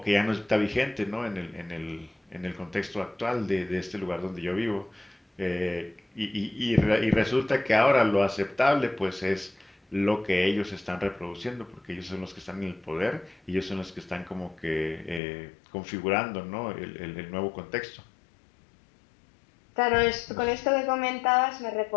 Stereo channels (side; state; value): right; drops out; at 15.2 s